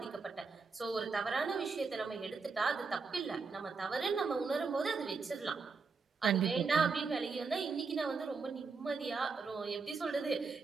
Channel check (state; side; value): quieter; left; 4.7 dB